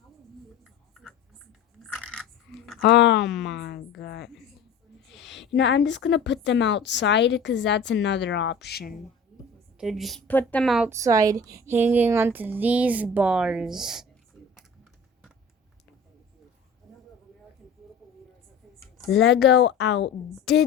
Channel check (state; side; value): quieter; right; 4.0 dB